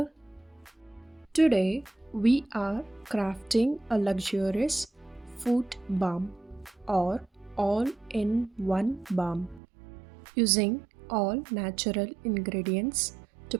Today we are crafting a luxurious foot balm or all-in-one balm using all natural ingredients to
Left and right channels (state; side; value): drops out; left; at 9.6 s